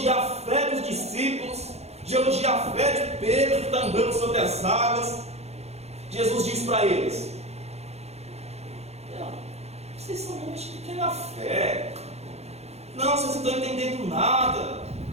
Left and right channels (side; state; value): left; late; 0.31 ms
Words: a fé dos discípulos, de elogiar a fé de Pedro que está andando sobre as águas, Jesus diz para eles: vocês são homens de pequena fé. Não, vocês não estão entendendo nada.